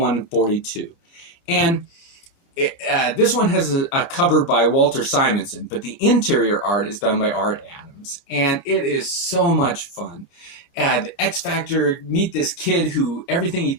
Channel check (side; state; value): right; late; 29 ms